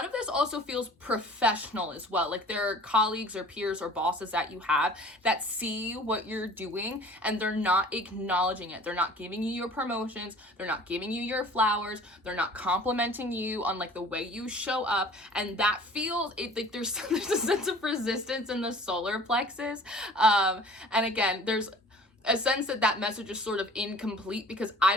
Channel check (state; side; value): normal; both; correlation 0.47